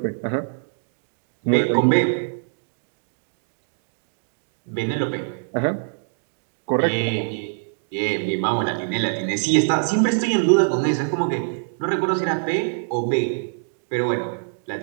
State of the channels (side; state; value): left; silent; digital silence